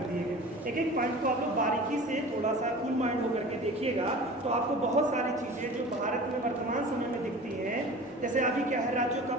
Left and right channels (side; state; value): both; normal; correlation 0.39